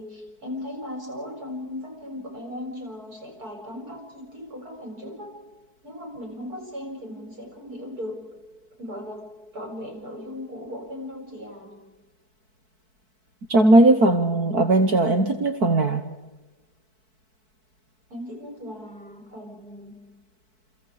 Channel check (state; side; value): late; left; 4.6 ms